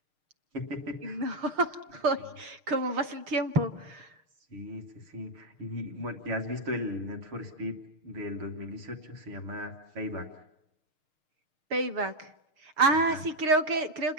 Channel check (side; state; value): left; late; 6.5 ms